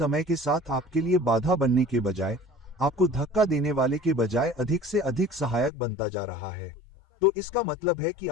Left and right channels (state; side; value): drops out; right; at 5.7 s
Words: के साथ आपके लिए बाधा बनने के बजाय, आपको धक्का देने वाले के बजाय अधिक से अधिक सहायक बनता जा रहा है। तो इसका मतलब है कि